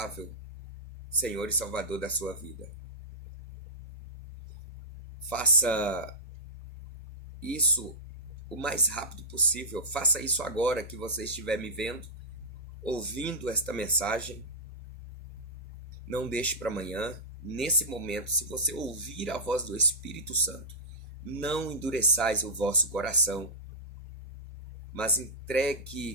Senhor e Salvador da sua vida. Faça isso o mais rápido possível. Faça isso agora que você estiver me vendo, ouvindo esta mensagem. Não deixe para amanhã. Nesse momento, se você ouvir a voz do Espírito Santo, não endureçais o vosso coração, mas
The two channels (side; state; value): both; normal; correlation -0.13